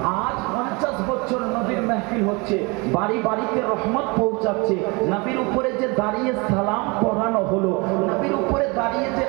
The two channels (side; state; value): left; quieter; 27.7 dB